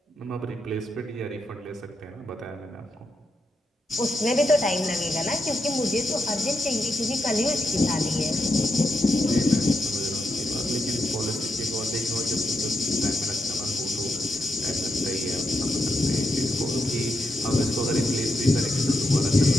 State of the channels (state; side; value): normal; both; correlation 0.84